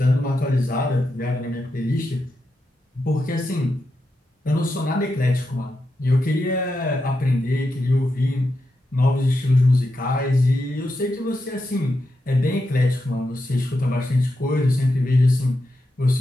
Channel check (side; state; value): both; normal; correlation 0.87